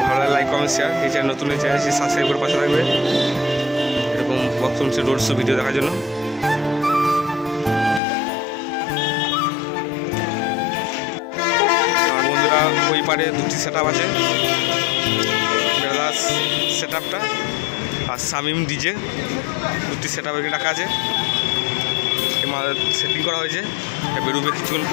ভালো লাগে লাইক কমেন্ট শেয়ার। এই চ্যানেল নতুন চ্যানেল সাবস্ক্রাইব করে পাশে থাকবে এরকম বক্তব্য রোড শো ভিডিও দেখার জন্য। আর বন্ধুরা, ওই পারে দুটি সেট আপ আছে, সেট আপটা আর শামিম ডিজে, দুটি সেট আপ এখানে রাখা আছে। সেটিং করা হয়েছে, বেরোবে কিছুক্ষণ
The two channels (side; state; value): right; drops out; at 8.0 s